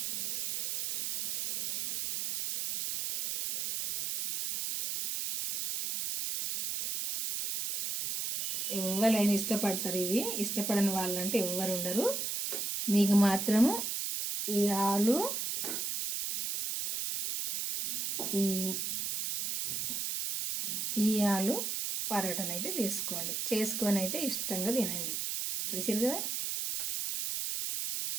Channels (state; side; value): noise; right; hiss, 2 dB below the sound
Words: ఎవరైనా ఇష్టపడతారు. ఇవి ఇష్టపడని వాళ్ళంటే ఎవ్వరు ఉండరు. మీకు మాత్రము ఈ ఆలు, ఈ ఆలు పరోటాను అయితే చేసుకొని అయితే ఇష్టంగా తినండి. చూసారు కదా,